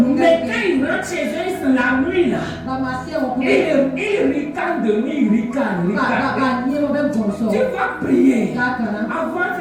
Mais quand ils rentrent chez eux, c'est la nuit là. Ils ricanent de nuit, ils ricanent. Tu vas prier. Avant,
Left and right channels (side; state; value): both; identical; correlation 1.00